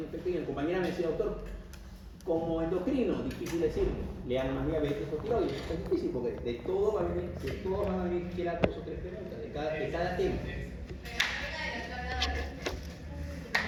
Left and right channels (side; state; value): both; identical; correlation 1.00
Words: infecto y el compañero me decía, doctor, Como endocrino, difícil decir, lean más diabetes o tiroides. Es difícil porque de todo van a venir siquiera 2 o 3 preguntas de cada tema.